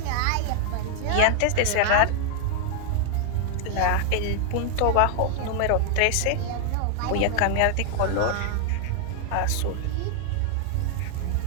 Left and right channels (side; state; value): both; different; correlation -0.01